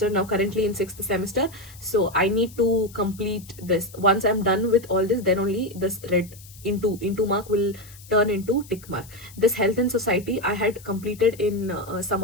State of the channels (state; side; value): noise; left; hiss, 21 dB below the sound